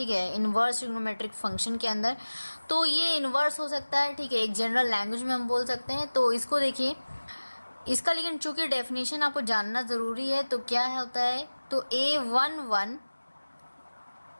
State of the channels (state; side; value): inverted; both; correlation -1.00